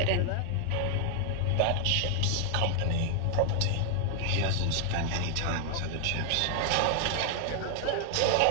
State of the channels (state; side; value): different; both; correlation 0.00